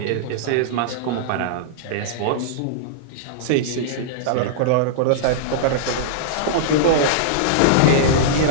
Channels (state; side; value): different; both; correlation -0.02